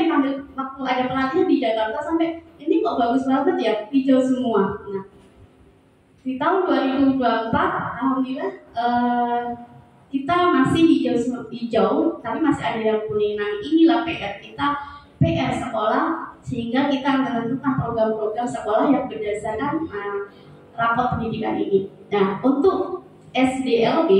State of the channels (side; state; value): both; identical; correlation 1.00